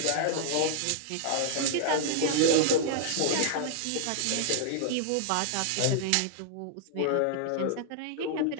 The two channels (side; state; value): both; different; correlation -0.01